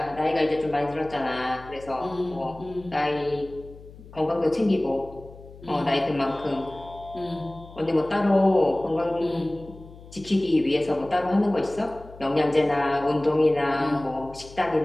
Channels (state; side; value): noise; left; hum, 19 dB below the sound